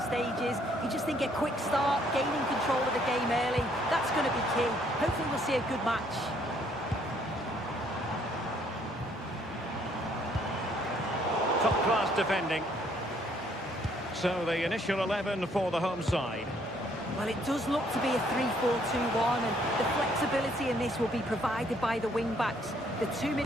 stages. You just think a quick start, gaining control of the game early, that's going to be key. Hopefully we'll see a good match. Top-class defending. So the initial 11 for the home side. Well, it does look to be a 3-4-2-1, and the flexibility in this will be provided by the wing-backs. The two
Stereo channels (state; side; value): normal; both; correlation 0.66